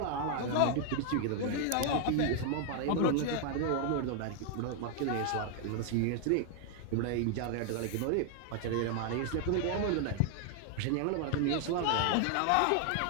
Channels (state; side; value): different; both; correlation 0.00